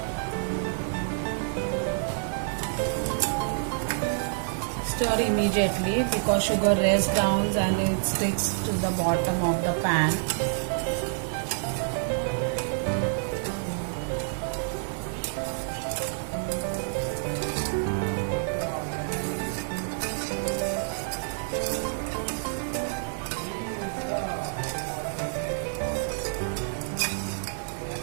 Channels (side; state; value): left; silent; digital silence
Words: Stir immediately because sugar rests down and it sticks to the bottom of the pan.